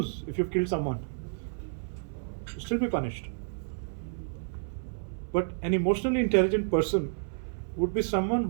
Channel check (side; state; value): left; silent; 58 dB below the other